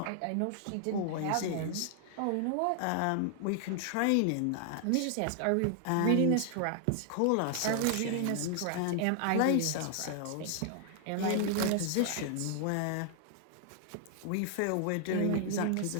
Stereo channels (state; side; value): different; both; correlation 0.00